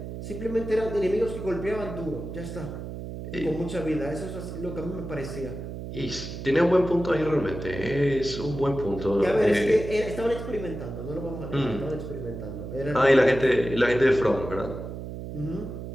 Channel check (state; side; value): noise; right; hum, 8 dB below the sound